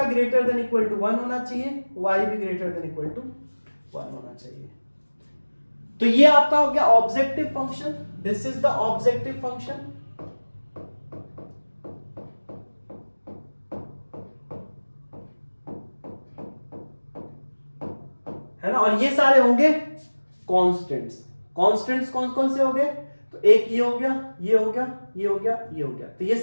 ग्रेटर देन इक्वल टू 1 होना चाहिए, y भी ग्रेटर देन इक्वल टू 1 होना चाहिए। तो ये आपका हो गया objective function, this is the objective function. है ना, और ये सारे होंगे कांस्टेंट्स। कांस्टेंट्स कौन कौन से हो गए, तो एक ये हो गया, ये हो गया, ये हो गया, ये हो गया, तो ये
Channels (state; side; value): inverted; both; correlation -1.00